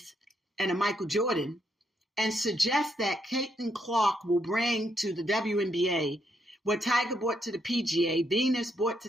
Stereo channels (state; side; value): normal; both; correlation 0.77